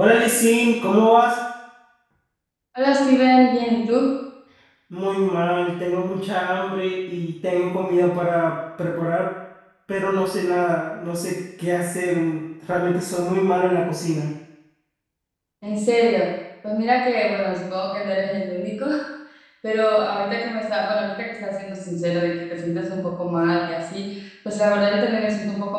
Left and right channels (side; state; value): both; identical; correlation 1.00